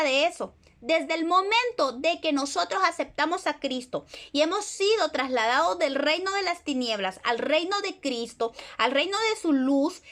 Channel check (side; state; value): both; identical; correlation 1.00